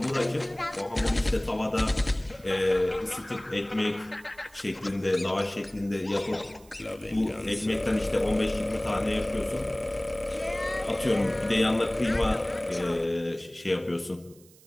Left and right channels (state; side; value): noise; right; hiss, 26 dB below the sound